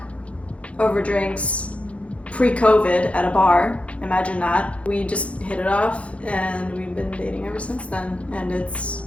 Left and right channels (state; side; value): late; right; 0.063 ms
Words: over drinks pre-COVID at a bar, imagine that, we just hit it off, and we've been dating ever since then. And